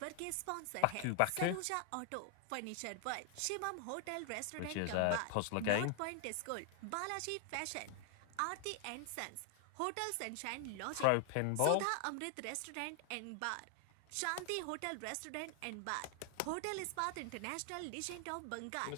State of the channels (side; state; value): both; different; correlation 0.00